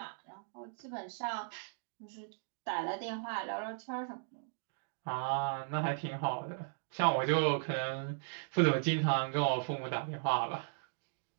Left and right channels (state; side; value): silent; left; digital silence